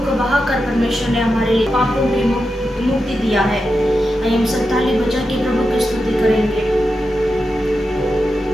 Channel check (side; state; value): both; normal; correlation 0.89